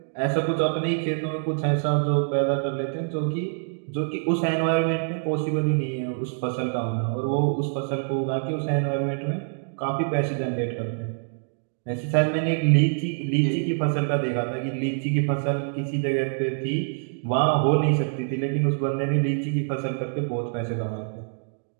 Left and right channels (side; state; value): left; silent; digital silence